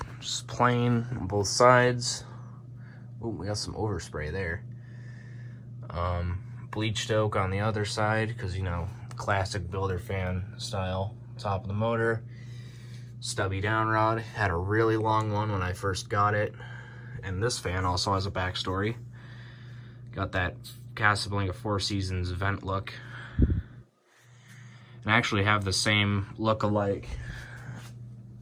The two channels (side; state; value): both; identical; correlation 1.00